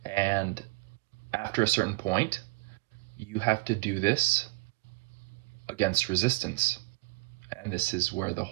And after a certain point, you have to do this against resistance. And this is where the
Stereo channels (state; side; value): quieter; left; 24.4 dB